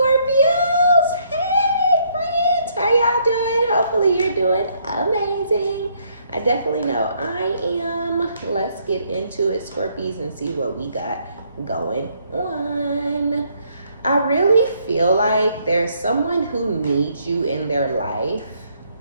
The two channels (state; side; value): inverted; both; correlation -0.69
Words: Hey, friends! How y'all doing? Hopefully you're doing amazing. I definitely know I am. Let's get into it, Scorpies, and see what we got going on. I really feel like there's someone who needs you in their life.